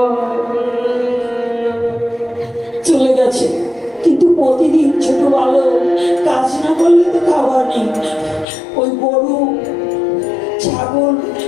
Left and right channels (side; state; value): right; drops out; at 8.5 s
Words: চলে গেছে, কিন্তু প্রতিদিন ছোট বালক কাজ না করলে তো খাবার নেই। ওই গরু ছাগল